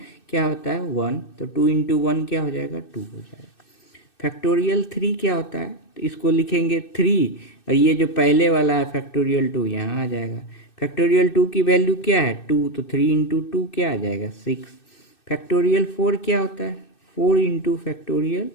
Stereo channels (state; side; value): late; right; 2.6 ms